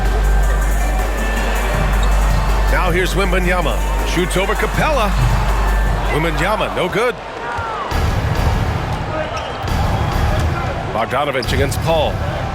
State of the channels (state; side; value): identical; both; correlation 1.00